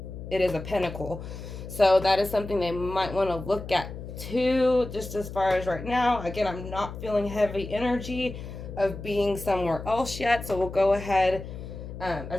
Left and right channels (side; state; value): left; noise; hum, 10 dB below the sound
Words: it is a pentacle. So that is something they might want to look at too, just as far as right now. Again, I'm not feeling heavy energy of being somewhere else yet. So we'll go ahead